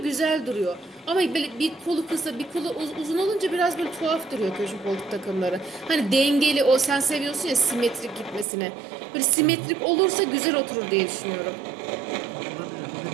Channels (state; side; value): drops out; left; at 8.5 s